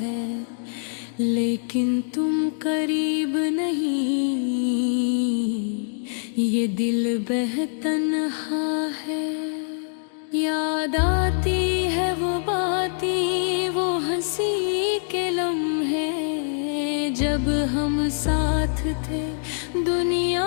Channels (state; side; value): silent; right; digital silence